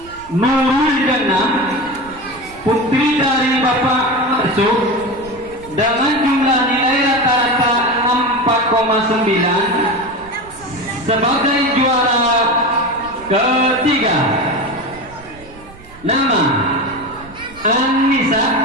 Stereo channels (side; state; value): right; noise; rumble, 21 dB below the sound